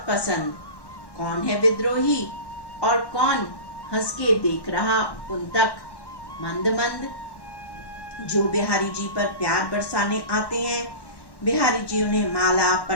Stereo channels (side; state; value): right; late; 1.1 ms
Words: पसंद, कौन है विद्रोही और कौन हंस के देख रहा उन तक मंद मंद। जो बिहारी जी पर प्यार बरसाने आते हैं, बिहारी जी उन्हें माला